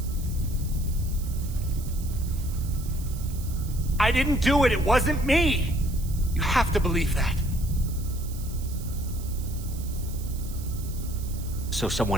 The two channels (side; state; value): right; noise; hiss, 16 dB below the sound